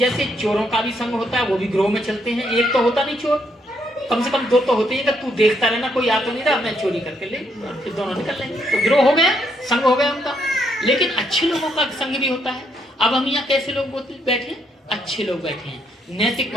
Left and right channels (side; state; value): both; normal; correlation 0.74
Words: चोरों का भी संघ होता है, वो भी ग्रोह में चलते हैं। एक तो होता नहीं चोर, कम से कम 2 तो होते हैं कि तू देखता रहना, कोई आ तो नहीं रहा, मैं चोरी करके ले, और फिर दोनों निकल लेंगे। तो ग्रोह हो गया, संघ हो गया उनका। लेकिन अच्छे लोगों का संघ भी होता है। अब हम यहाँ कैसे लोग बैठे? अच्छे लोग बैठे हैं,